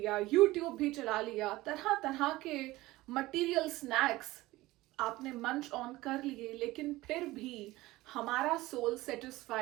यूट्यूब भी चला लिया, तरह तरह के मटेरियल स्नैक्स आपने मंच ऑन कर लिए, लेकिन फिर भी हमारा सोल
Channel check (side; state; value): left; quieter; 18.5 dB